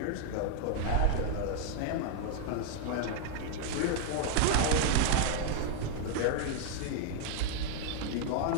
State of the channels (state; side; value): different; both; correlation 0.00